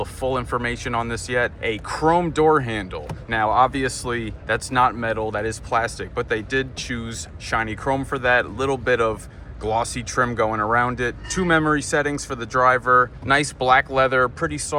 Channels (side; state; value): both; identical; correlation 1.00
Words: full information on this yet. A chrome door handle. Now, obviously, that's not metal, that is plastic, but they did choose shiny chrome for that. A little bit of glossy trim going around it. 2 memory settings for the driver. Nice black leather, pretty